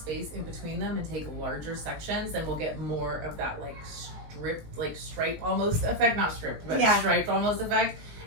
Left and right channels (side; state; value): left; late; 19 ms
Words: in between them and take larger sections, then we'll get more of that like stripe almost effect, not stripped, but striped almost effect.